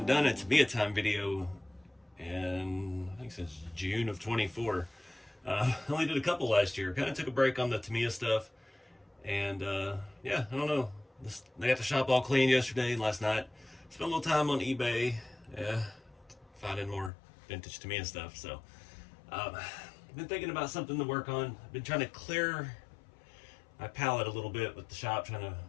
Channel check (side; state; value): right; drops out; at 17.1 s